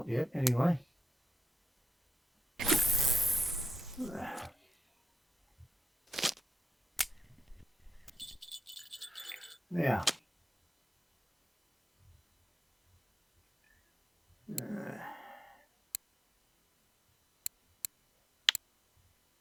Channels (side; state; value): both; normal; correlation 0.86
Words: yet anyway. Now,